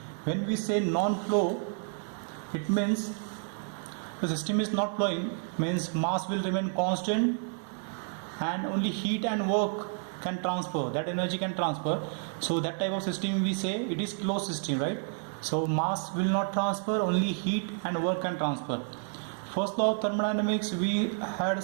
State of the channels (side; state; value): left; silent; 56 dB below the other